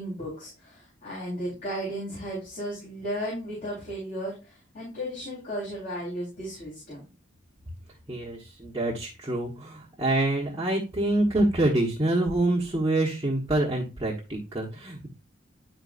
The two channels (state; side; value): normal; both; correlation 0.66